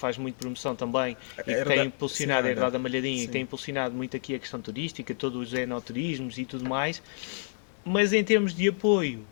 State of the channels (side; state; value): right; silent; digital silence